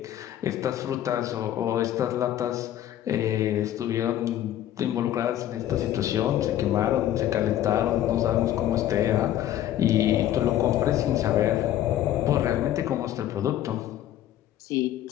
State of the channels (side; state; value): right; quieter; 12.2 dB